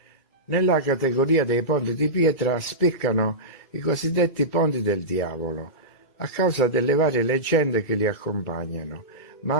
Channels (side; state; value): right; late; 2.3 ms